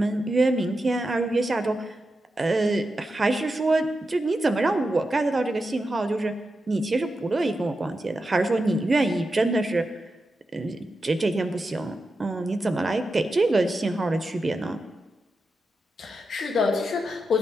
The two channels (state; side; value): normal; both; correlation 0.89